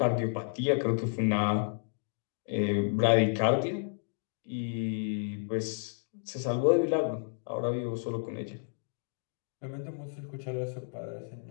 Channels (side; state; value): right; silent; digital silence